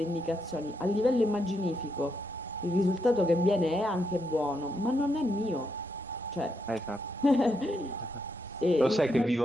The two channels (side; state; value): both; normal; correlation 0.80